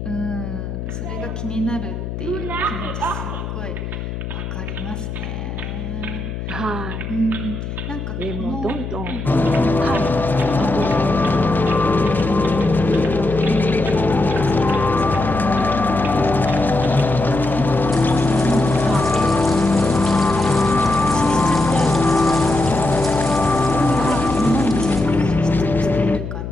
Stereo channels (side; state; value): left; noise; hum, 7 dB below the sound